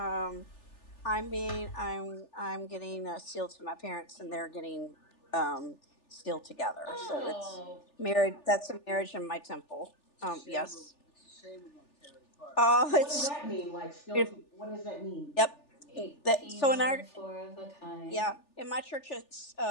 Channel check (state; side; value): late; right; 3.4 ms